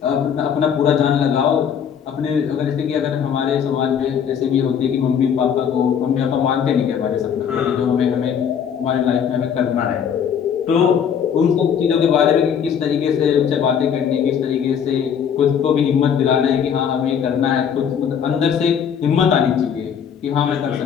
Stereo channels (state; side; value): quieter; right; 7.9 dB